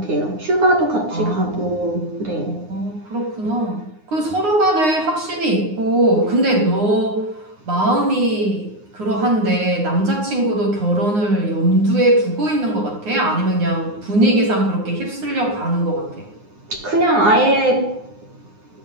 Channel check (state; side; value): late; left; 9.6 ms